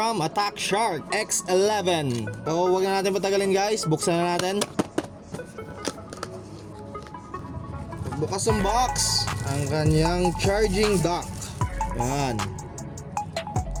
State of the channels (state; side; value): identical; both; correlation 1.00